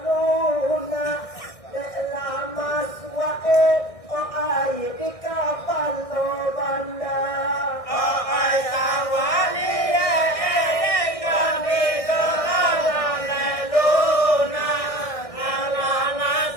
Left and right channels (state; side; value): late; right; 1.6 ms